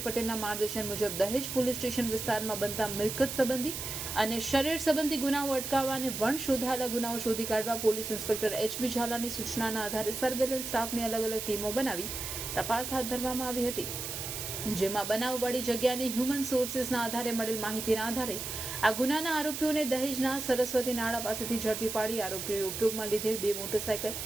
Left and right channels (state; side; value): noise; right; hiss, 5 dB below the sound